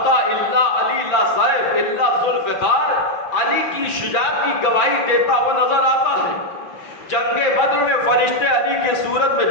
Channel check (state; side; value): late; right; 5.9 ms